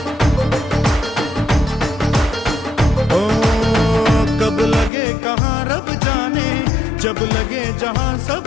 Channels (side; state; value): right; drops out; at 4.9 s